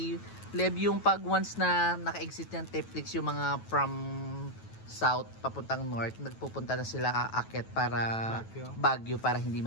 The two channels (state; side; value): late; right; 9.2 ms